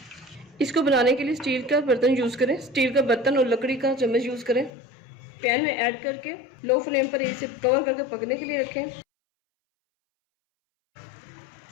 इसको बनाने के लिए स्टील का बर्तन यूज़ करें। स्टील का बर्तन और लकड़ी का चम्मच यूज़ करें। पैन में ऐड करके लो फ्लेम पर इसे कवर करके पकने के लिए रखें।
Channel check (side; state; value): right; drops out; at 4.7 s